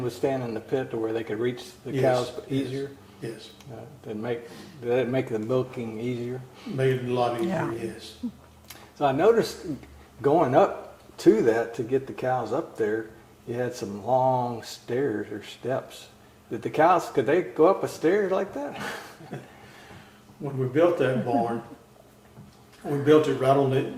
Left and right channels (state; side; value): identical; both; correlation 1.00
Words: would stand in the pit to where they could reach the cows easier. Yes. Did that make the milking easier? Made it a lot easier. Yeah. Yes. So I noticed going up to that to get the cows up there, you had some long stairs or steps. Did the cows, could they go up a stair like that? When we built that barn, we built it right on